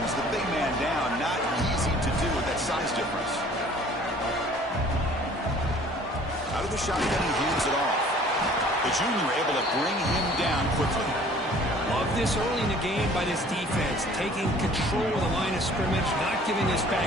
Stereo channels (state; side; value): normal; both; correlation 0.52